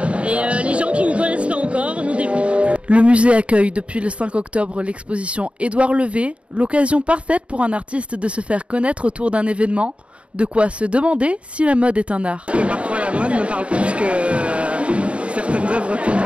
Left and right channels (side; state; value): left; late; 0.061 ms